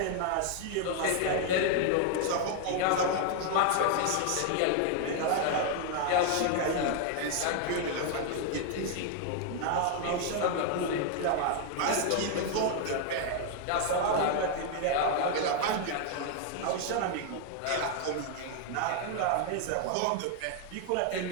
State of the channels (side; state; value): both; different; correlation 0.00